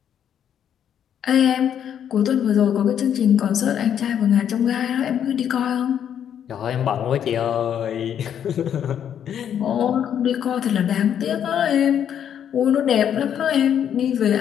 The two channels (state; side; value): quieter; right; 9.2 dB